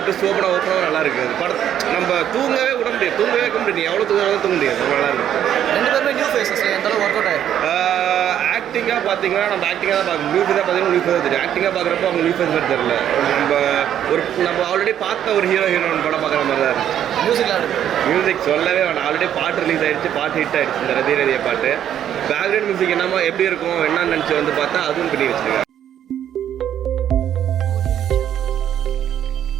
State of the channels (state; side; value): quieter; left; 10.3 dB